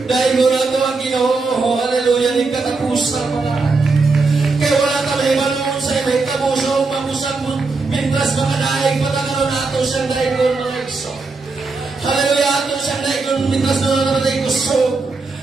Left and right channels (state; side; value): quieter; left; 3.9 dB